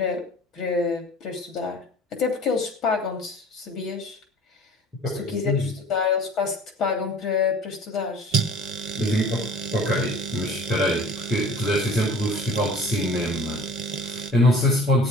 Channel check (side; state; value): both; normal; correlation 0.45